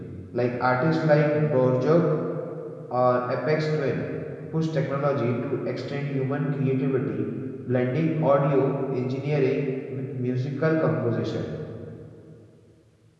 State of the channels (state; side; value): identical; both; correlation 1.00